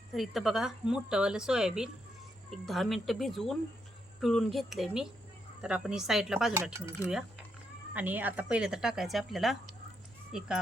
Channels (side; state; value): both; normal; correlation 0.79